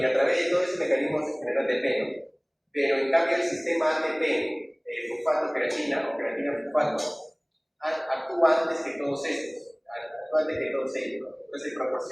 a través de todo ese mecanismo se genera ATP, ¿no? Pero en cambio el sistema ATP, fosfato-creatina o creatina-fosfato, actúa antes que todos estos, ¿no? Entonces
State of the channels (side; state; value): both; identical; correlation 1.00